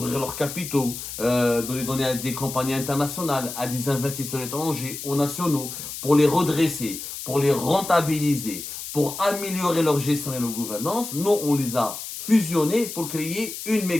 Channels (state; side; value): noise; left; hiss, 8 dB below the sound